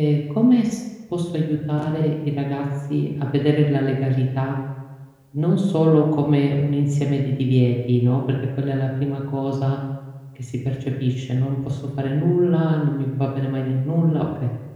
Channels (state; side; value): identical; both; correlation 1.00